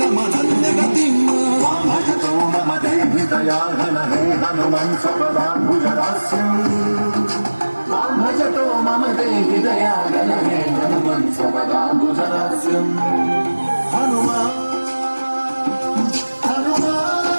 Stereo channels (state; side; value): inverted; both; correlation -1.00